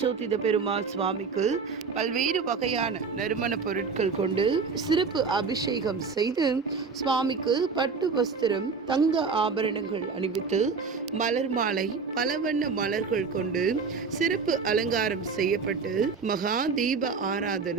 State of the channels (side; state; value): left; quieter; 5.0 dB